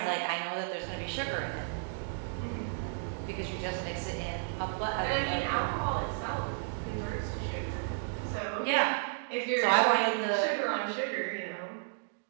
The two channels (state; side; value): silent; left; digital silence